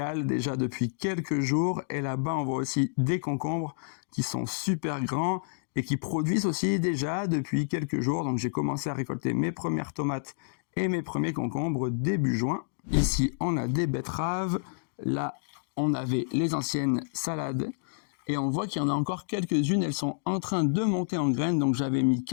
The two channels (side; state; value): right; silent; digital silence